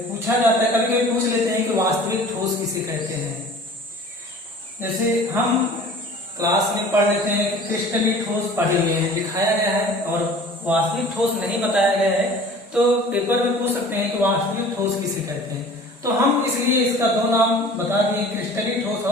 पूछा जाता है, कभी कभी पूछ लेते हैं कि वास्तविक ठोस किसे कहते हैं। जैसे हम क्लास में पढ़ लेते हैं कि क्रिस्टलीय ठोस पढ़े हुए हैं, दिखाया गया है, और वास्तविक ठोस नहीं बताया गया है, तो पेपर में पूछ सकते हैं कि वास्तविक ठोस किसे कहते हैं। तो हम इसलिए इसका दो नाम बता दिए, क्रिस्टलीय ठोस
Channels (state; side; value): normal; both; correlation 0.45